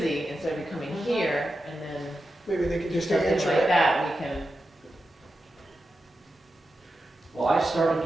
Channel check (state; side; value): normal; both; correlation 0.90